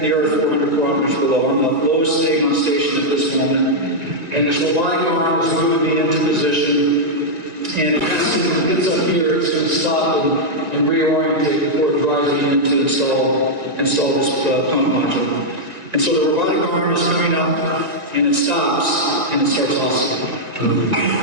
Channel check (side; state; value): left; late; 1.9 ms